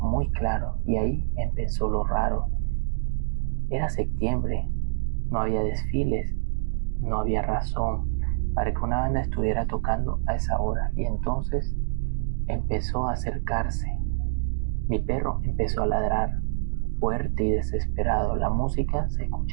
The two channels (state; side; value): silent; left; digital silence